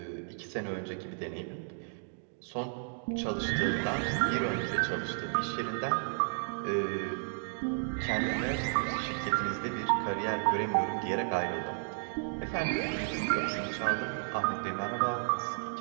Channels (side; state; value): left; silent; digital silence